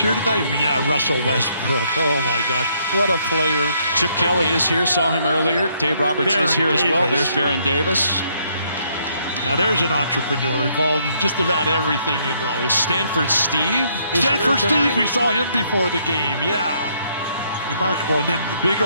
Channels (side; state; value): both; inverted; correlation -0.70